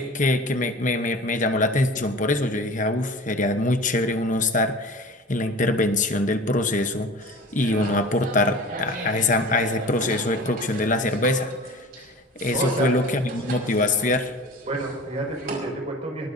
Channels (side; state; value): both; normal; correlation 0.38